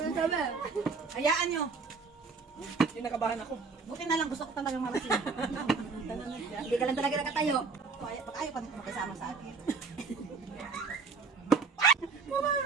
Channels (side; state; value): left; quieter; 4.7 dB